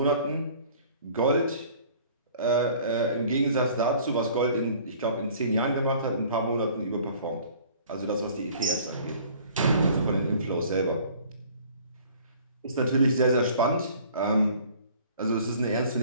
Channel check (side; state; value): both; inverted; correlation -0.51